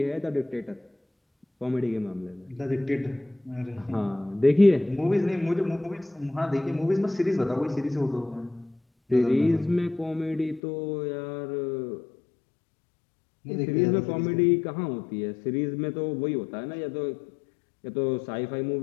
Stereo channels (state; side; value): drops out; right; at 10.6 s